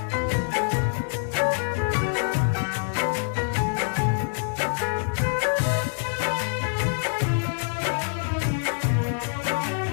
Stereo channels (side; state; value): right; silent; digital silence